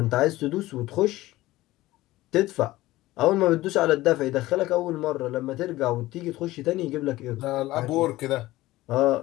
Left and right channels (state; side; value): quieter; right; 17.4 dB